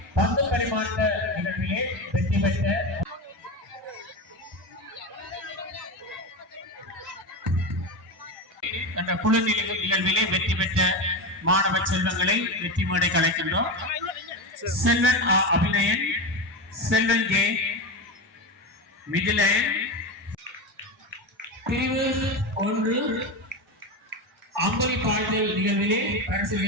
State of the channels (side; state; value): both; normal; correlation 0.19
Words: பந்து பரிமாற்ற நிகழ்விலே வெற்றி பெற்ற அந்த குழு நிகழ்விலே வெற்றி பெற்ற மாணவ செல்வங்களை வெற்றி மேடை அழைக்கின்றோம். செல்வன் அபிநயன், செல்வன் ஜே மிதிலயன். பிரிவு 1 அம்பலி பாடல் நிகழ்விலே